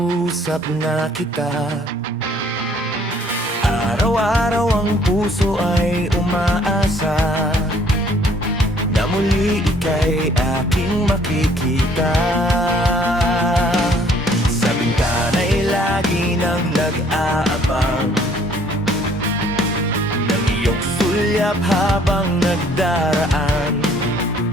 na kita. Araw-araw ang puso ay umaasa na muli ika'y aking makikita. Sa bintana'y lagi nang nag-aabang ng iyong sulyap habang nagdaraan.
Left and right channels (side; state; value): both; normal; correlation 0.60